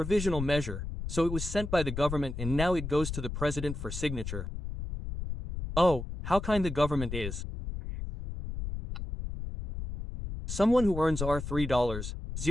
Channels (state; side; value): noise; left; rumble, 6 dB below the sound